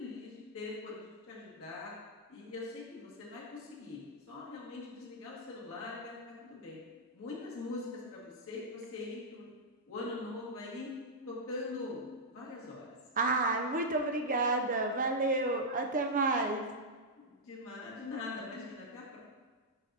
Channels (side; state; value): both; normal; correlation -0.06